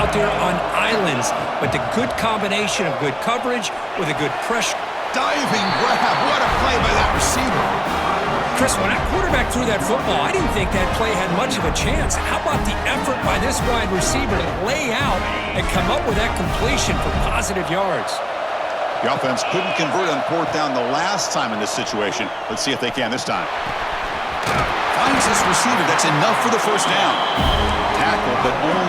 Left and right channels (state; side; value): identical; both; correlation 1.00